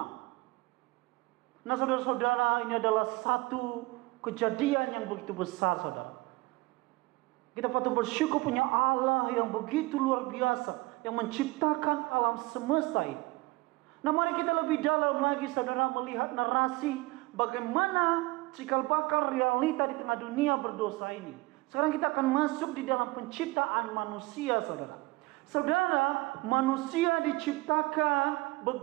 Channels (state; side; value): quieter; left; 22.4 dB